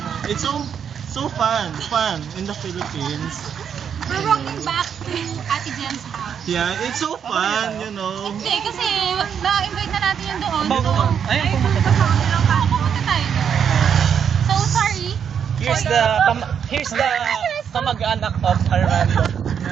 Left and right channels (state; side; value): quieter; left; 7.8 dB